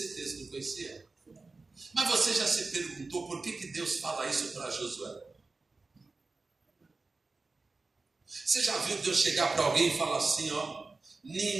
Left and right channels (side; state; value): left; quieter; 3.7 dB